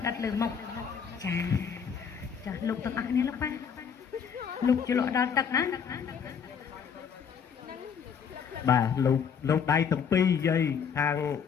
ដិតលើមុខចាចាលោកទាំងអស់គ្នាលោកប៉ាលោកជលក់ដល់ទឹកណា បាទលោកដៃទាំងពីរយាយខាង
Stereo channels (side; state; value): right; quieter; 7.0 dB